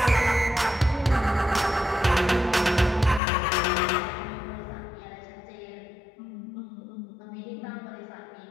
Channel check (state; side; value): drops out; right; at 3.2 s